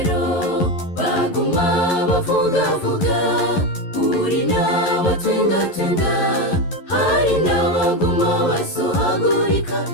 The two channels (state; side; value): late; right; 11 ms